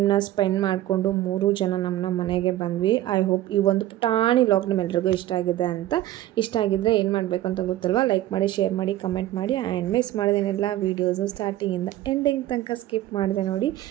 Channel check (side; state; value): left; quieter; 14.2 dB